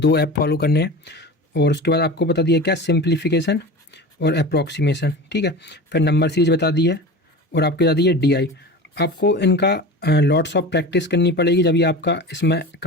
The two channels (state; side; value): normal; both; correlation 0.33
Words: ऐप फॉलो करने हैं। और उसके बाद आपको बता दिया क्या, सिंप्लीफिकेशन और अप्रॉक्सीमेशन। ठीक है, फिर नंबर सीरीज बता दी है, और आपको बता दी है डी। आपको इनका लॉट्स ऑफ प्रैक्टिस करनी पड़ेगी, जब ये आपका इसमें